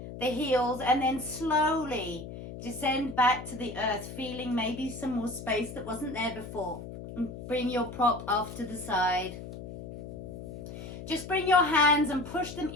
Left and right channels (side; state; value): left; noise; hum, 11 dB below the sound